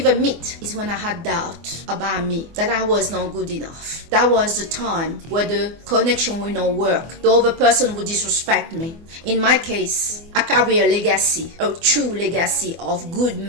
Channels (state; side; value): late; left; 24 ms